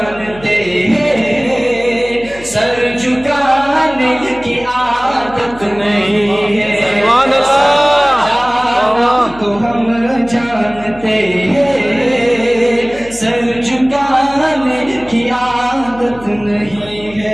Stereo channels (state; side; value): noise; left; hum, 19 dB below the sound